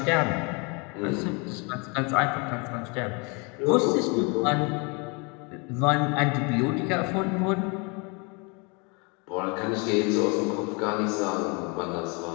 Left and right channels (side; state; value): right; quieter; 31.3 dB